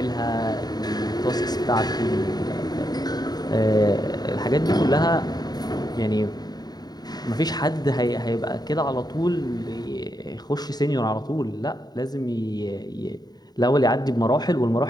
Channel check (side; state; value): right; late; 0.19 ms